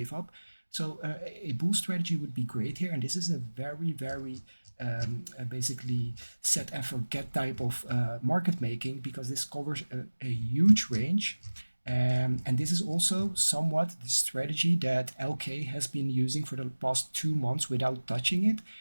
up. So a bull strategy would be great here, and this is a very, very basically set and forget type of market making, because this covers a huge range. And this is also somewhat the strategy that LK has been using for the past 2 months without touching it.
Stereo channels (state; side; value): inverted; both; correlation -1.00